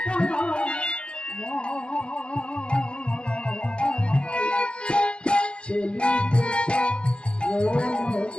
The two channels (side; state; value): right; late; 0.051 ms